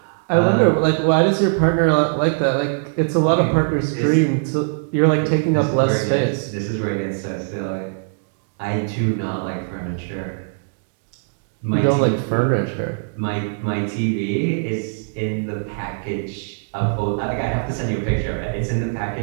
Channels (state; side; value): silent; left; digital silence